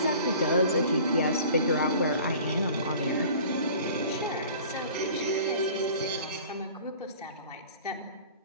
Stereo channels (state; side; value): inverted; both; correlation -0.45